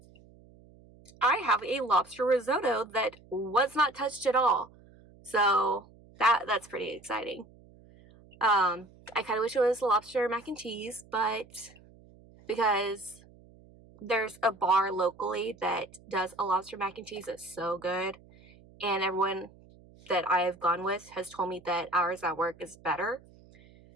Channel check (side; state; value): right; noise; hum, 25 dB below the sound